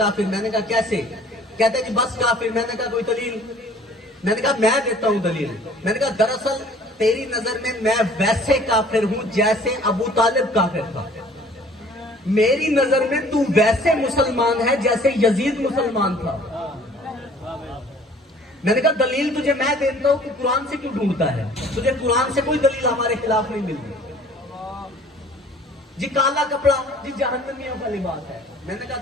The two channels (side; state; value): both; normal; correlation 0.52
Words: मैंने कहा कैसे? कहता जी बस काफिर। मैंने कहा कोई दलील? मैंने कहा मैं देता हूं दलील। मैंने कहा दरअसल तेरी नजर में मैं वैसे काफिर हूं जैसे अबू तालिब काफिर था। मेरी नजर में तू वैसे मुसलमान है जैसे यजीद मुसलमान था। मैंने कहा दलील तुझे मैं देता हूं कि कुरान से क्यों ढूंढता है? तुझे कुरान से कोई दलील हमारे खिलाफ नहीं मिलती। जी काला कपड़ा जी जहन्नमियों का लिबास है। मैंने कहा